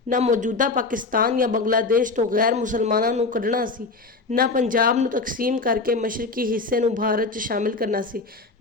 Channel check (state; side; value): quieter; right; 3.8 dB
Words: ਨਾ ਮੌਜੂਦਾ ਪਾਕਿਸਤਾਨ ਜਾਂ ਬੰਗਲਾਦੇਸ਼ ਤੋਂ ਗੈਰ ਮੁਸਲਮਾਨਾਂ ਨੂੰ ਕੱਢਣਾ ਸੀ, ਨਾ ਪੰਜਾਬ ਨੂੰ ਤਕਸੀਮ ਕਰਕੇ ਮਸ਼ਰਕੀ ਹਿੱਸੇ ਨੂੰ ਭਾਰਤ 'ਚ ਸ਼ਾਮਿਲ ਕਰਨਾ ਸੀ,